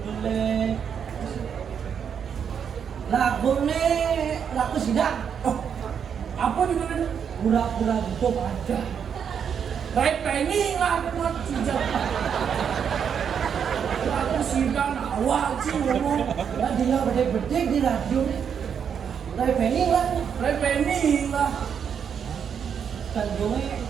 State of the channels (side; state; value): left; quieter; 7.5 dB